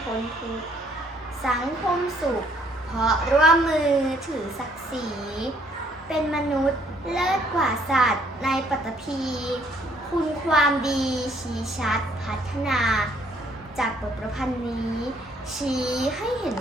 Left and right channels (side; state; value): both; normal; correlation 0.65